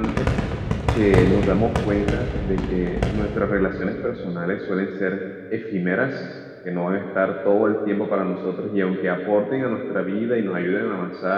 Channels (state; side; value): identical; both; correlation 1.00